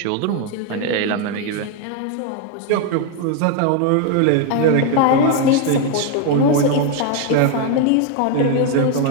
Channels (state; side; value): different; both; correlation 0.01